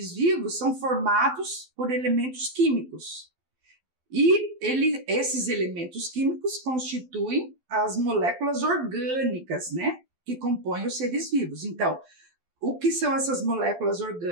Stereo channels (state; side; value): late; left; 12 ms